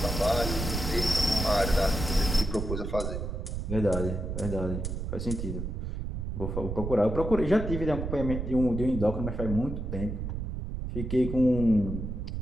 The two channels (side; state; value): right; noise; rumble, 4 dB below the sound